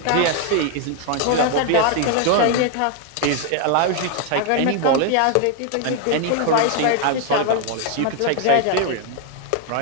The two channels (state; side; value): different; both; correlation 0.00